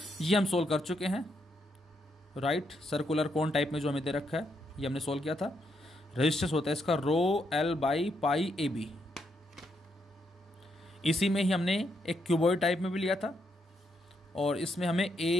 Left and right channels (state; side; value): normal; both; correlation 0.78